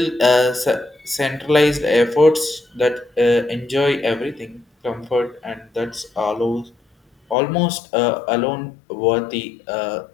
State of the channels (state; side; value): drops out; right; at 7.4 s